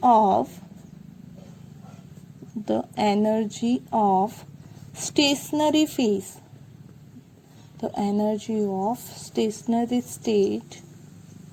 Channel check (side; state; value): both; identical; correlation 1.00